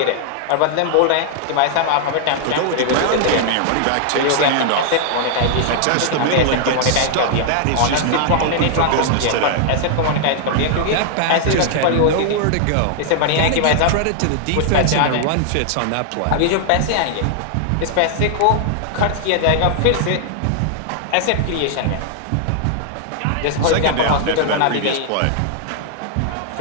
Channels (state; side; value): different; both; correlation 0.00